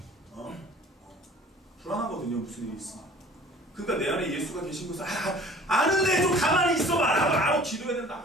불안하거든요. 무슨 일이 있으면. 그러니까 내 안에 예수가 계신 것을 아는데 좀 가만히 있어봐라. 알아, 기도해야 된다.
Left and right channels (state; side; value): normal; both; correlation 0.48